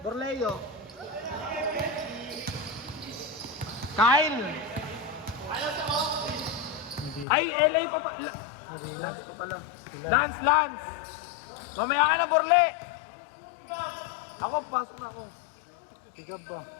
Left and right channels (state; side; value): drops out; right; at 7.2 s